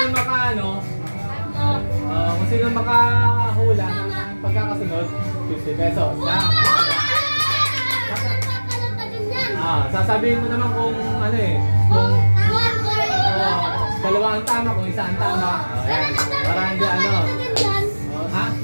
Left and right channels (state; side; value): inverted; both; correlation -1.00